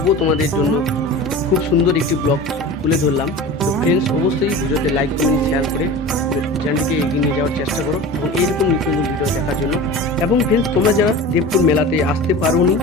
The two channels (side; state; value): both; normal; correlation 0.34